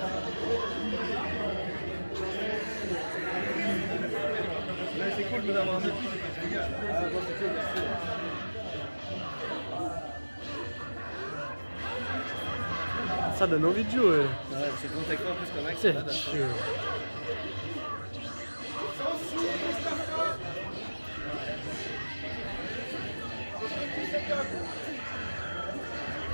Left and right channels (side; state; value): both; inverted; correlation -1.00